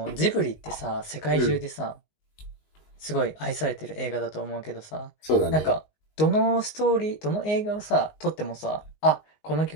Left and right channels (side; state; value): right; late; 19 ms